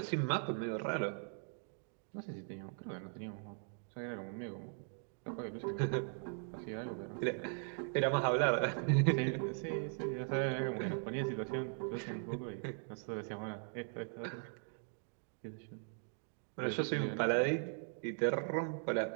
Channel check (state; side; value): silent; left; 51 dB below the other